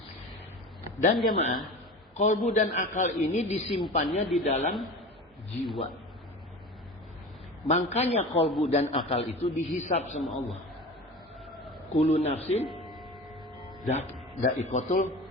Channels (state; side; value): normal; both; correlation 0.34